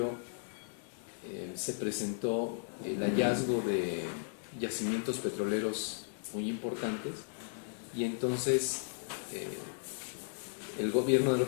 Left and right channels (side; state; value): right; silent; digital silence